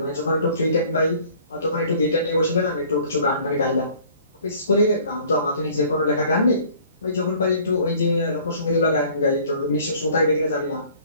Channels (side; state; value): both; inverted; correlation -0.53